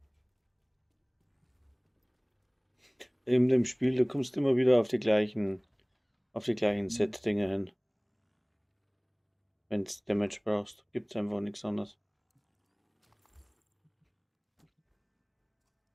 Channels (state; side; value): identical; both; correlation 1.00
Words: In dem Spiel, du kommst immer wieder auf die gleichen Set-Dinge hin. Wenn du Damage brauchst, gibt es einfach nichts anderes.